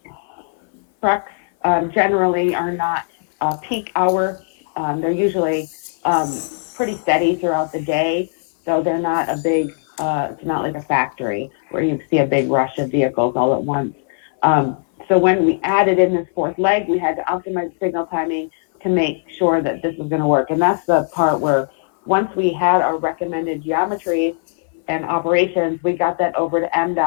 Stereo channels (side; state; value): right; silent; 59 dB below the other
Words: Trucks generally are not peak hour. They're usually pretty steady throughout the day. So they're not a big, it's not like a factory where you see a big rush of vehicles all at once. So when we added in this fourth leg, we had to optimize signal timing to make sure that this was going to work. And that's the part where once we had our recommended geometries and operations, we got that over to